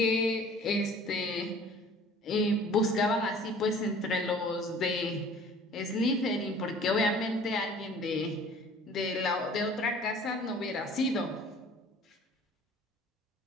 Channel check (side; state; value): both; normal; correlation 0.49